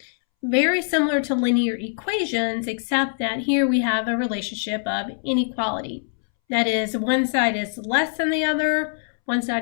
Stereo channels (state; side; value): silent; right; 63 dB below the other